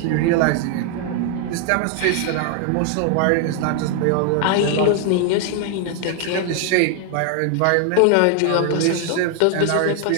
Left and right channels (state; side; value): different; both; correlation 0.00